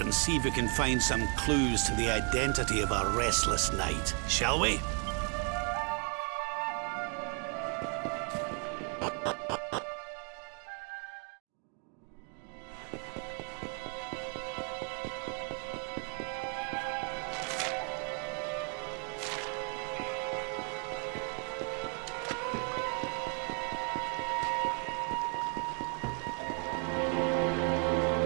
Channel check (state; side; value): quieter; left; 37.5 dB